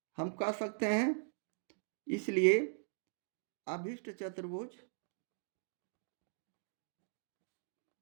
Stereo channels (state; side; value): silent; left; digital silence